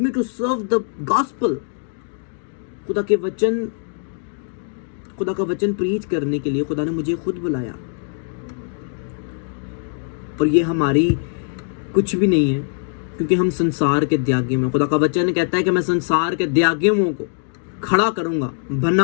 to serve the gospel. खुदा का वचन प्रीच करने के लिए खुदा ने मुझे खुद बुलाया। और ये हमारी कुछ भी नहीं है, क्योंकि हम संसार के त्यागी में, खुदा का वचन कहता है कि मैं संसार के त्यागियों को खड़ा करूंगा,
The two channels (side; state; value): right; silent; digital silence